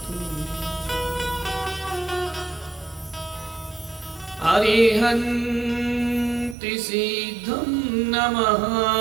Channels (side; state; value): left; drops out; at 6.6 s